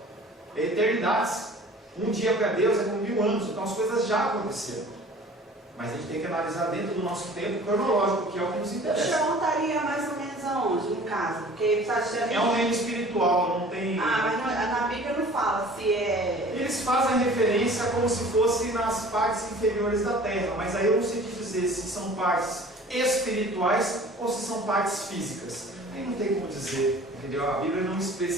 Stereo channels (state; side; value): normal; both; correlation 0.47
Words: É eternidades. Um dia para Deus é como 1000 anos, então as coisas já aconteceram. Mas a gente tem que analisar dentro do nosso tempo cronológico, que é o que nos O interessa. chão estaria mais ou menos aonde, no caso? Porque você acha É um reino espiritual, não tem... mas na Bíblia não fala se é... Eles fazem referência como se fosse nas partes inferiores da terra, mas aí eu não sei te dizer se são partes espirituais ou se são partes físicas. Aí não tem como dizer, entendeu? A Bíblia não